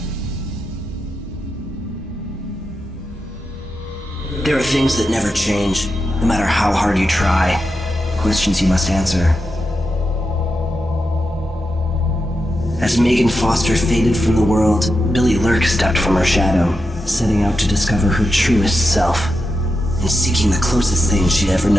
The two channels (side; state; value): both; normal; correlation 0.88